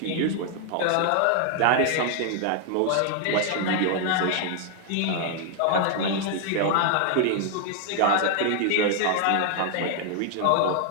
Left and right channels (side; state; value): both; different; correlation 0.00